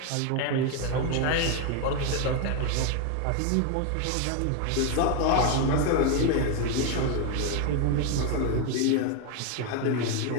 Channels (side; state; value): both; different; correlation 0.01